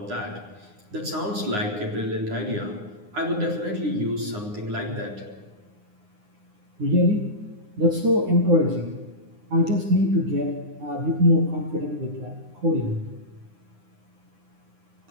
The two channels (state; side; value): late; left; 9.7 ms